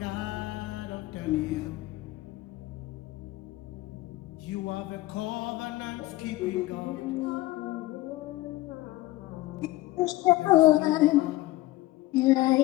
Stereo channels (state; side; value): quieter; right; 18.3 dB